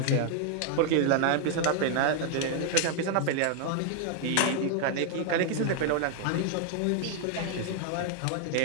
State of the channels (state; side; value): different; both; correlation 0.00